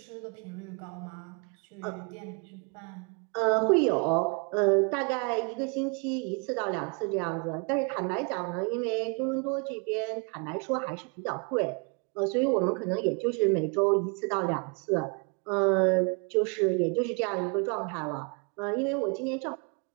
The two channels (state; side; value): quieter; left; 34.9 dB